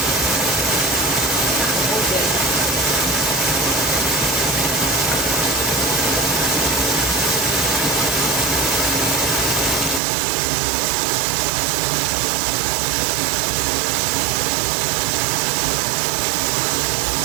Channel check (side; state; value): left; drops out; at 10.0 s